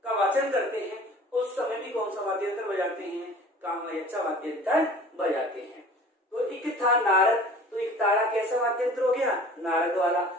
का वाचन करते हैं उस समय भी कौन सा वाद्य यंत्र बजाते हैं? कामायच्चा वाद्य यंत्र बजाते हैं। तो एक था नारद, तो एक तारा कैसा वाद्य यंत्र हो गया? नारद वाला।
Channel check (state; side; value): normal; both; correlation 0.45